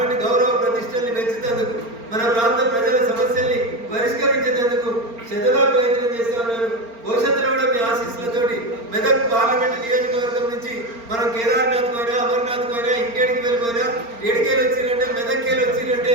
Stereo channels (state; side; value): late; left; 4.4 ms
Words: గౌరవ ప్రతిష్టల్ని పెంచుతందుకు, మన ప్రాంత ప్రజల సమస్యల్ని పరిష్కరించేందుకు శతగా ప్రయత్నం చేస్తా ఉన్నాను. భవిష్యత్తులో కూడా మీ ఆశీస్సులతోటి మెదక్ పార్లమెంట్ నియోజకవర్గం నుంచి మనం కేదార్నాథ్ పోయినా, అమర్నాథ్ పోయినా, ఇంకేడికి వెళ్ళిపోయినా, ఏడికేలు వచ్చిరంటే, మెదక్కేలు వచ్చిరంటే